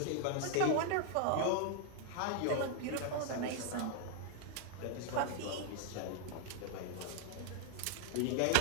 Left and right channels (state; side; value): different; both; correlation 0.00